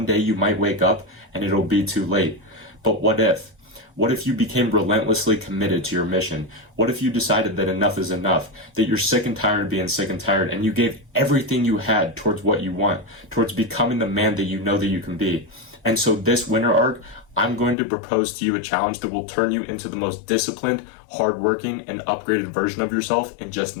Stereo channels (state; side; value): drops out; right; at 17.8 s